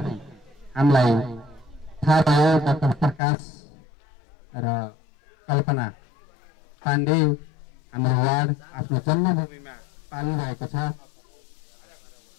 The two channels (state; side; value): drops out; right; at 3.2 s